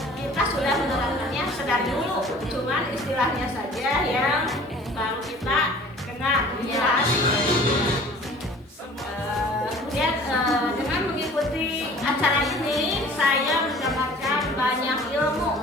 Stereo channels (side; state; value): both; normal; correlation 0.48